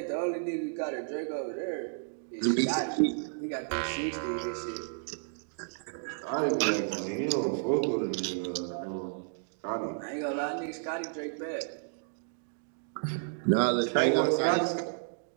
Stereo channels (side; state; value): left; silent; digital silence